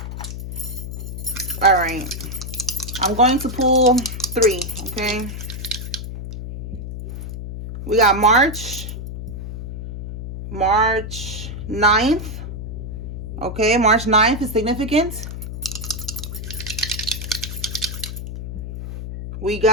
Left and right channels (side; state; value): left; noise; hum, 7 dB below the sound